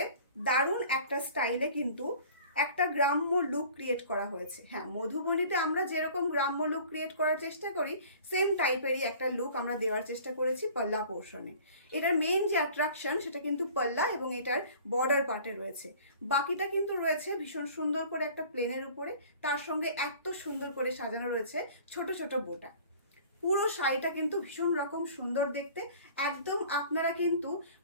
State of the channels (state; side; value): inverted; both; correlation -0.47